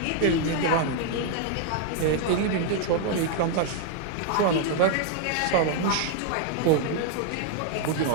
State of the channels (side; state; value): both; different; correlation 0.00